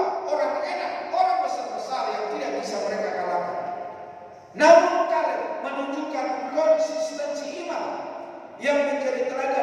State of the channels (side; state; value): both; identical; correlation 1.00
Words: orang enak, orang besar-besar yang tidak bisa mereka kalahkan. Namun kalian menunjukkan konsistensi iman yang menjadi